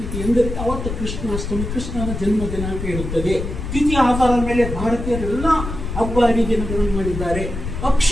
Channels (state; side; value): noise; left; rumble, 6 dB below the sound